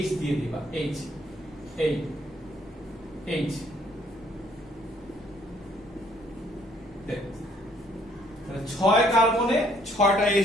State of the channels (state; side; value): normal; both; correlation 0.64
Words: H দিয়ে দিবা, H, এই H। তাহলে 6 কার্বনে 6টা